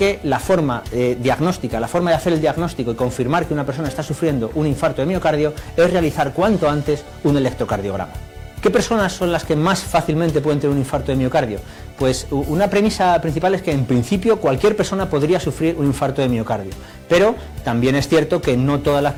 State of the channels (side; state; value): both; identical; correlation 1.00